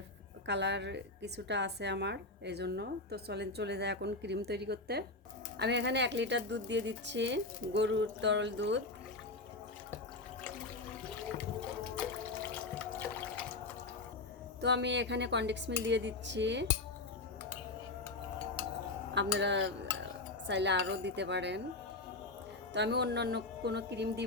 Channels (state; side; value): quieter; right; 3.2 dB